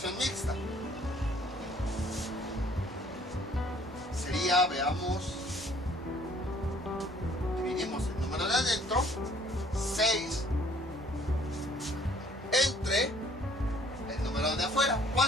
mixta. Sería, veamos, dividimos el número de adentro, 6, entre el número de afuera,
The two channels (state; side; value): normal; both; correlation 0.58